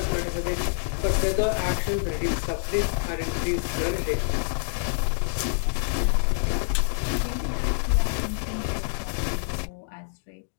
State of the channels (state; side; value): silent; right; digital silence